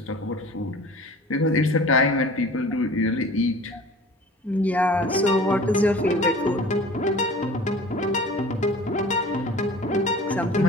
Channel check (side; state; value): both; normal; correlation 0.43